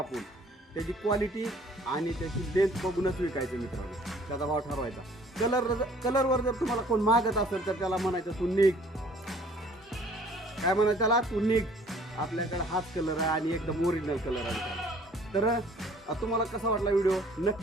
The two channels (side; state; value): both; normal; correlation 0.56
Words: त्याची क्वालिटी आणि त्याची लेंथ बघूनच विकायचं मित्रांनो, त्याचा भाव ठरवायचा. कलरवर जर तुम्हाला कोण मागत असेल तर त्याला म्हणायचं तू निघ. काय म्हणायचं त्याला, तू निघ, आपल्याकडे हाच कलर आहे आणि एकदम ओरिजिनल कलर आहे. तर तुम्हाला कसा वाटला व्हिडिओ